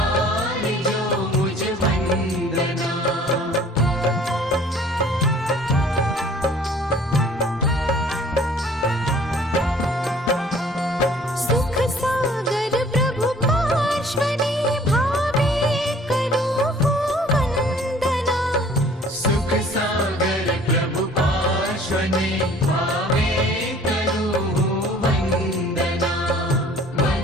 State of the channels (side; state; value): both; normal; correlation 0.53